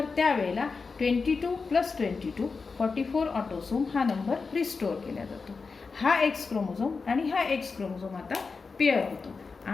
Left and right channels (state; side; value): quieter; right; 4.6 dB